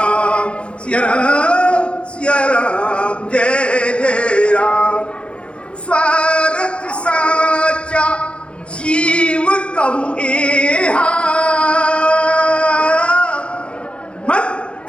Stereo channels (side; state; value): right; late; 0.058 ms